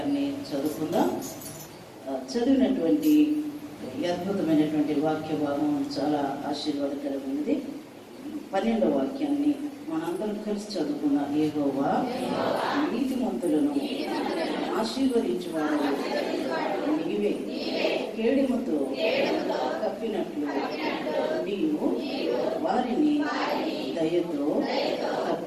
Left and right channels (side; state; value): both; identical; correlation 1.00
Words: చదువుకుందాం. చదివినటువంటి అద్భుతమైనటువంటి వాక్య భాగం చాలా ఆశీర్వాదకరమైనది. 12వ వాక్యాన్ని మనందరం కలిసి చదువుకున్న యెహోవా నీతిమంతులను ఆశీర్వదించువాడు నీవే. కేడుముతో కప్పినట్లు నీవు వారిని దయతో